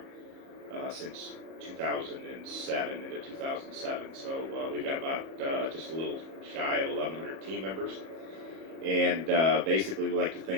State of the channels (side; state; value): left; late; 37 ms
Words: since 2007, into 2007. So we've got about just a little shy of 1,100 team members. And basically we like to